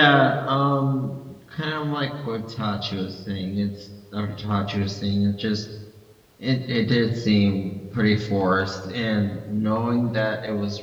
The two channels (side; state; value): both; identical; correlation 1.00